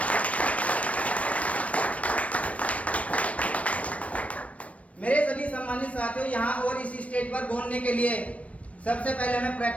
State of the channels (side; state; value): right; late; 0.065 ms